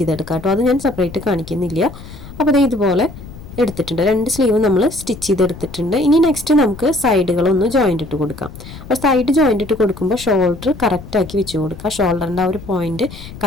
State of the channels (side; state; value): left; noise; rumble, 15 dB below the sound